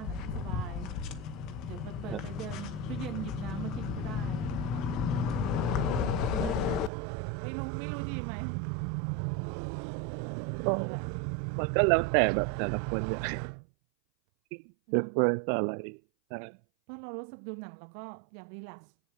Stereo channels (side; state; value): left; drops out; at 6.9 s